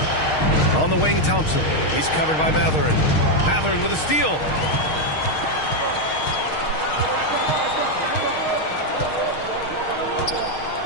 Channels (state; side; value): late; right; 6.5 ms